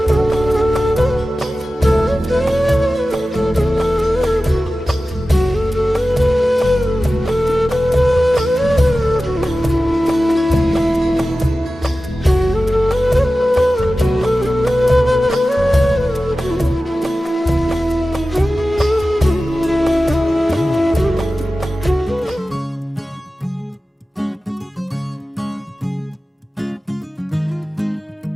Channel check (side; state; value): both; normal; correlation 0.95